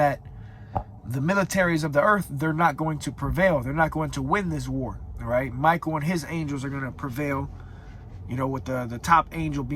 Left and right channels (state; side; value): identical; both; correlation 1.00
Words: the militaries of the earth, they're not going to prevail. They're not going to win this war. All right, Michael and his angels are going to prevail, with the top angel